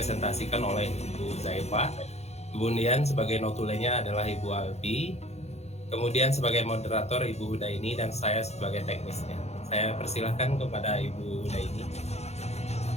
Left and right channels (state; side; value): late; right; 0.31 ms